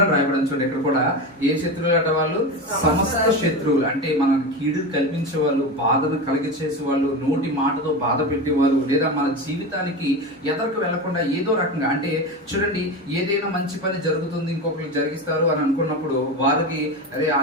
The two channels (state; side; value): normal; both; correlation 0.22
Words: అని రాయబడి. చూడండి, ఇక్కడ కూడా ఏ శత్రువులు అంటే వాళ్ళు సమస్త శత్రువులు. అంటే మన కీడు కల్పించే వాళ్ళు, బాధను కలిగించేసే వాళ్ళు, నోటి మాటతో బాధ పెట్టేవాళ్ళు, లేదా మన జీవితానికి ఎదరకు వెళ్లకుండా ఏదో రకంగా, అంటే చూడండి, ఏదైనా మంచి పని జరుగుతుంది ఇంకొకరికి జరిగిస్తారు అని అనుకున్నప్పుడు వారికి, అరే